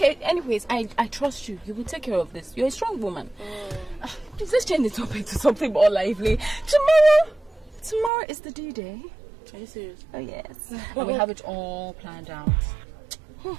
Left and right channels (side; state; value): left; drops out; at 8.1 s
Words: anyways, I trust you. You will take care of this. You're a strong woman. Please, let's change the topic to something more lively. Tomorrow is the D-Day. Are you serious? Oh, yes. And we have it all planned out.